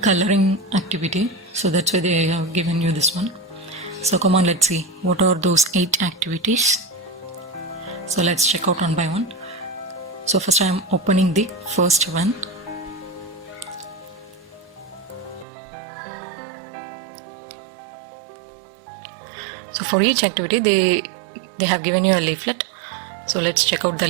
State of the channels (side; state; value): left; drops out; at 15.5 s